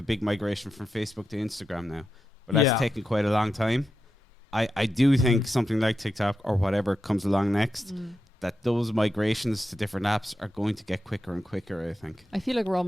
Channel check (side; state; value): both; normal; correlation 0.88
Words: big migration from Facebook to Instagram now, but that's taken quite a long time. I do think something like TikTok or whatever comes along next, that those migrations to different apps are going to get quicker and quicker, I think. I feel like we're